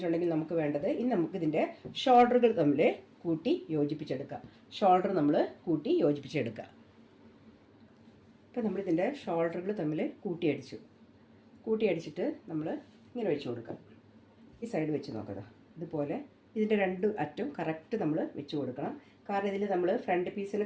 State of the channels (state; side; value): identical; both; correlation 1.00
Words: നമുക്ക് വേണ്ടത്, ഇനി നമുക്കിതിൻ്റെ ഷോൾഡറുകൾ തമ്മിൽ കൂട്ടി യോജിപ്പിച്ചെടുക്കാം. ഷോൾഡർ നമ്മൾ കൂട്ടി യോജിപ്പിച്ചെടുക്കുക. അപ്പോൾ നമ്മളിതിൻ്റെ ഷോൾഡറുകൾ തമ്മിൽ കൂട്ടി അടിച്ചിട്ട് നമ്മൾ ഇങ്ങനെ വെച്ച് കൊടുക്കാം. ഈ സൈഡ് വെച്ച് നോക്കുക. ഇതുപോലെ ഇതിൻ്റെ രണ്ട് അറ്റം കറക്റ്റ് നമ്മൾ വെച്ച് കൊടുക്കണം. കാരണം ഇതിൽ നമ്മൾ ഫ്രണ്ട് പീസിന്